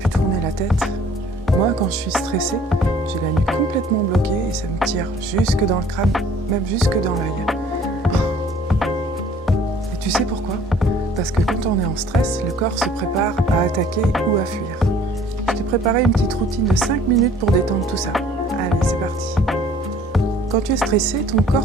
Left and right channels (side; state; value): both; normal; correlation 0.55